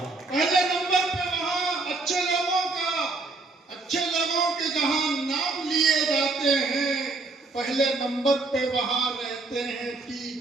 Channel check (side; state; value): left; quieter; 3.5 dB